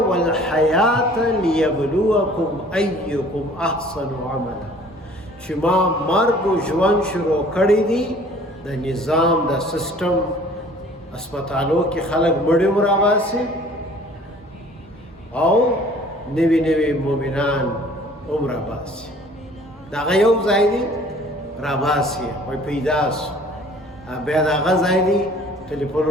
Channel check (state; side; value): normal; both; correlation 0.52